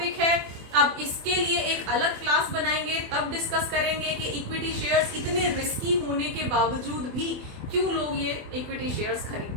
है। अब इसके लिए एक अलग क्लास बनाएंगे, तब डिस्कस करेंगे कि इक्विटी शेयर्स इतने रिस्की होने के बावजूद भी क्यों लोग ये इक्विटी शेयर्स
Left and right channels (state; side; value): late; left; 24 ms